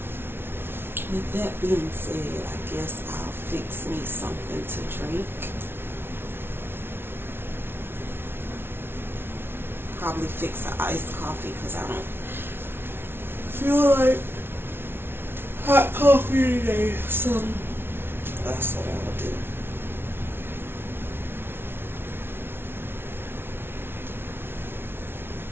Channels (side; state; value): left; late; 0.11 ms